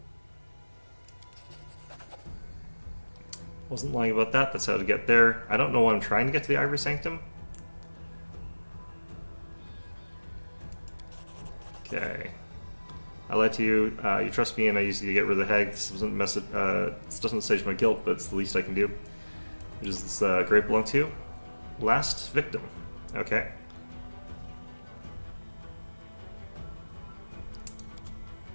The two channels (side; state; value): both; inverted; correlation -1.00